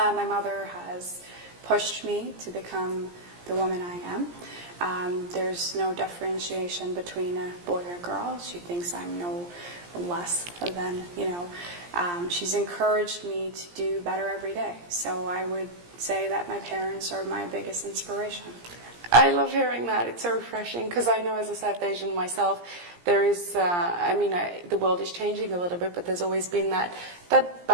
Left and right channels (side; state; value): left; late; 17 ms